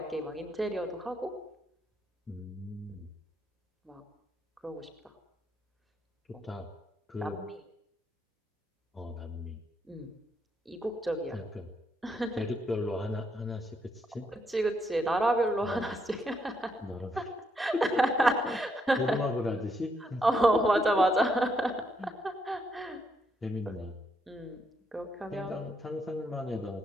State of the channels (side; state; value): both; normal; correlation 0.76